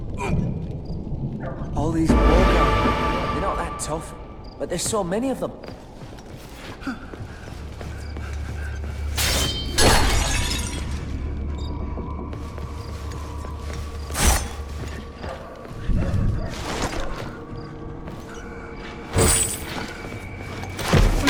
All these wargod, they're not that tough, but there's so many of them.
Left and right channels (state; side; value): identical; both; correlation 1.00